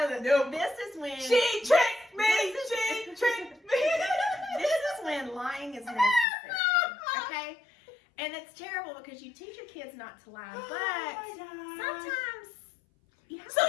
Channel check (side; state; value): right; drops out; at 6.2 s